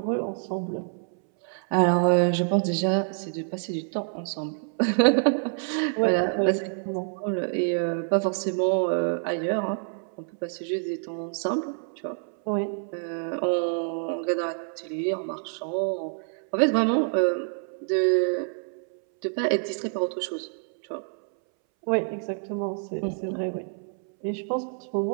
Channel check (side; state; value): left; silent; 60 dB below the other